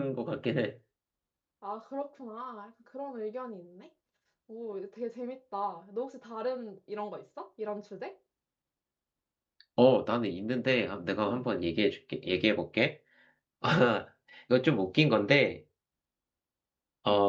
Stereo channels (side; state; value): both; identical; correlation 1.00